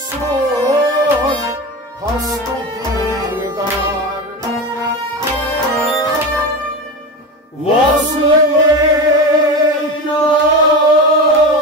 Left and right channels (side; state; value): both; normal; correlation 0.23